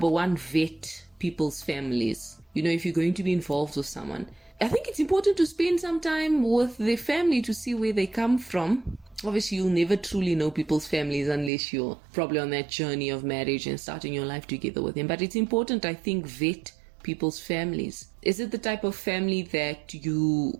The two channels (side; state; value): left; drops out; at 11.5 s